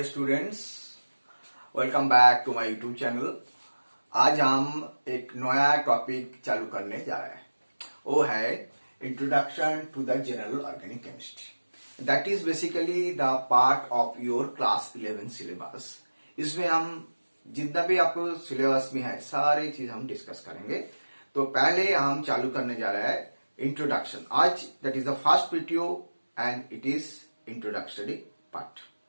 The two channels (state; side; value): inverted; both; correlation -1.00